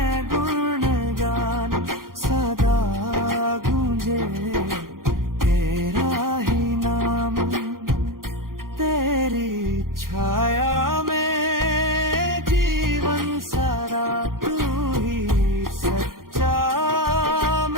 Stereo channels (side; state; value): left; late; 0.91 ms